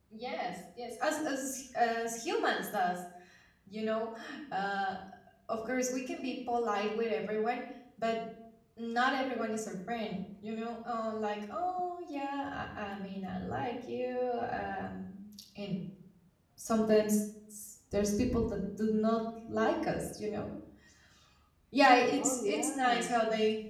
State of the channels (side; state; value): both; identical; correlation 1.00